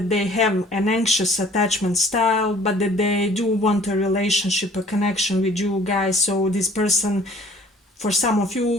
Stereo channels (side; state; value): both; normal; correlation 0.53